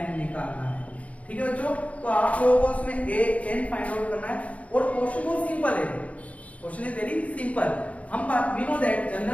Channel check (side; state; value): right; late; 0.066 ms